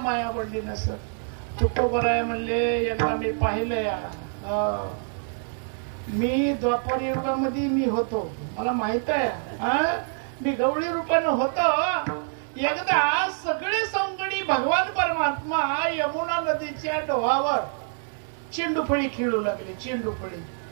आवडली नसत? तुकोबराय म्हणले, एकदा मी पाहिलंय, मी द्वापर युगामध्ये मी होतो, मला माहित आहे, मी गवळी रूपानं होतो. एकदा सगळे सौंगडी भगवान परमात्मा यमुना नदीच्या डोहावर चेंडूफळी खेळू लागले.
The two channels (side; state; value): left; silent; 61 dB below the other